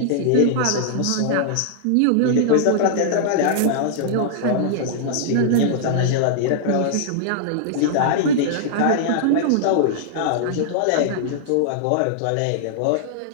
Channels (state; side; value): different; both; correlation -0.01